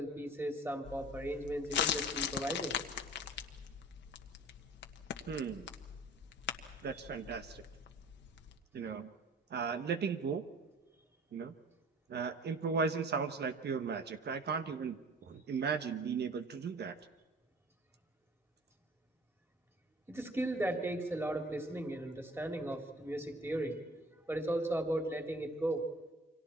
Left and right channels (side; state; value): both; normal; correlation 0.46